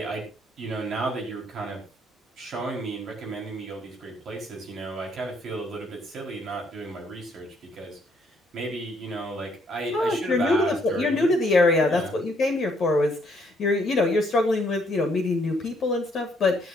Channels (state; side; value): normal; both; correlation 0.69